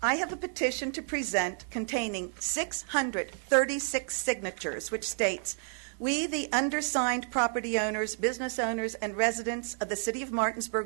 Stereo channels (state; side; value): silent; left; 56 dB below the other